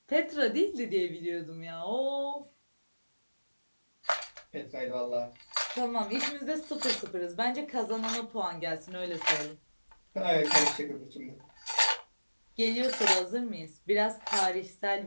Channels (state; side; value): inverted; both; correlation -1.00